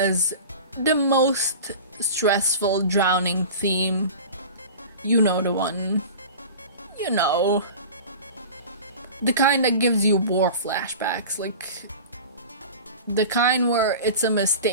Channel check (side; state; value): both; inverted; correlation -0.35